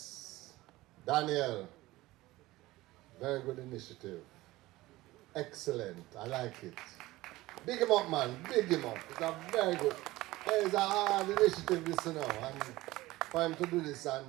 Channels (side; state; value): left; quieter; 18.4 dB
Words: Daniel. Very good initiative. Excellent. I like it. Big him up, man. Big him up. It's a very good. It's a hard initiative, this, you know. And for him to do this